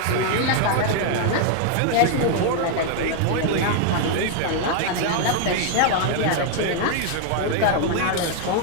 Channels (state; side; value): different; both; correlation 0.00